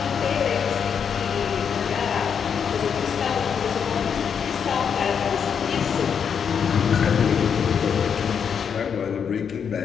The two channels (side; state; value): right; quieter; 7.2 dB